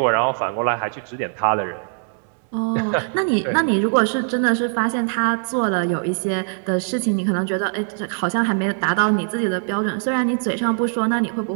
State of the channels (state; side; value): silent; left; digital silence